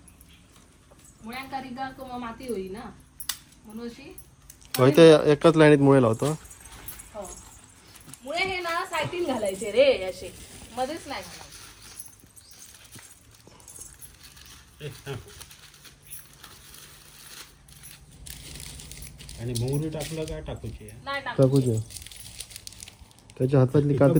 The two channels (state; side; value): identical; both; correlation 1.00